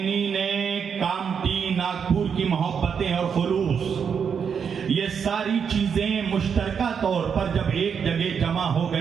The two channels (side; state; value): left; quieter; 6.9 dB